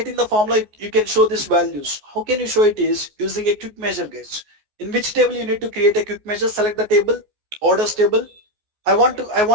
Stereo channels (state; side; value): late; left; 14 ms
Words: the formula, you can show these values. How can you show it is using a quick measure, guys. In which table you need to create a quick measure, select the table, orders table. I want